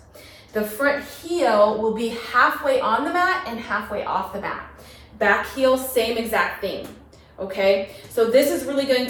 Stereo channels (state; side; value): identical; both; correlation 1.00